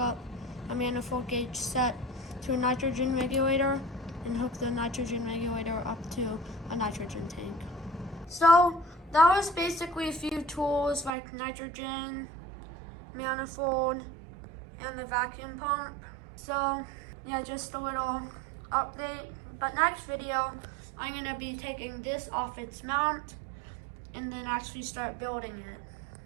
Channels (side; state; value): left; drops out; at 11.1 s